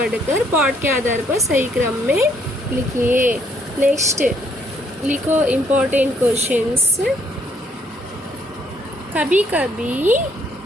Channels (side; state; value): both; normal; correlation 0.67